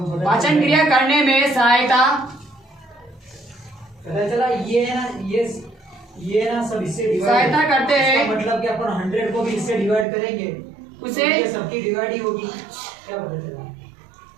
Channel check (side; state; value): left; drops out; at 10.1 s